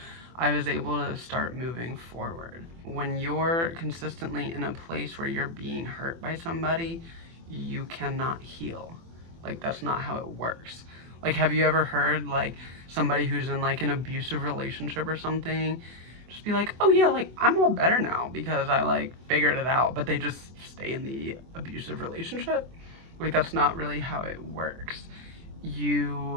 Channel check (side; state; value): left; late; 24 ms